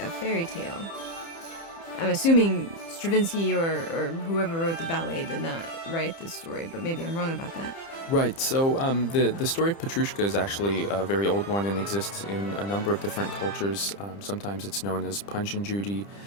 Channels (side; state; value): right; late; 30 ms